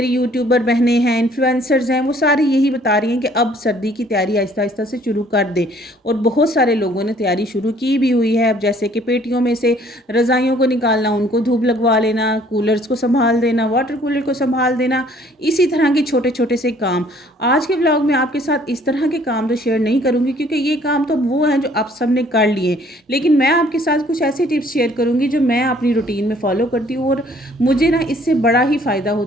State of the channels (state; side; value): normal; both; correlation 0.59